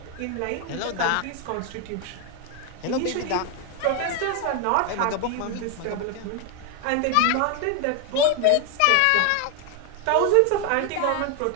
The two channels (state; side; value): different; both; correlation 0.01